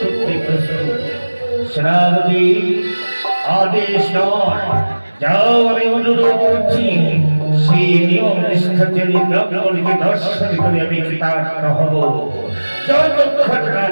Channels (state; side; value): inverted; both; correlation -1.00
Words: করতে প্রস্তুত। সেনাপতি আদেশ নয়, যাও, আমি অনুরোধ করছি। সেই নিয়ম নিষ্ঠার ব্রাহ্মণকে দর্শন করে আমি কৃতার্থ হব। যতক্ষণ না